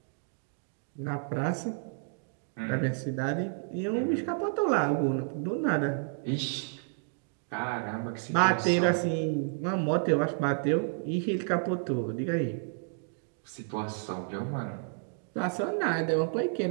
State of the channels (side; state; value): left; silent; 57 dB below the other